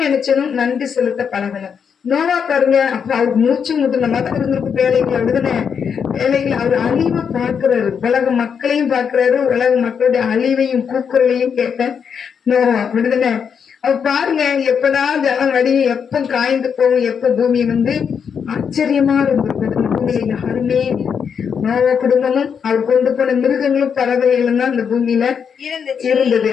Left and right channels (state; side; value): quieter; right; 7.0 dB